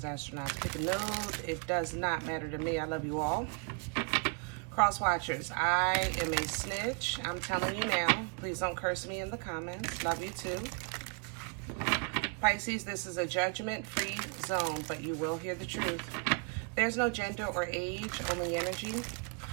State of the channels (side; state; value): left; quieter; 35.6 dB